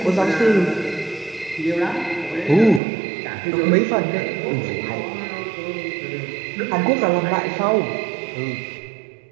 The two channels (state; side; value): drops out; left; at 2.8 s